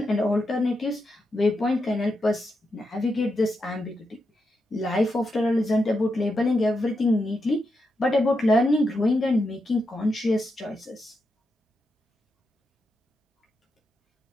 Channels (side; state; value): both; normal; correlation 0.85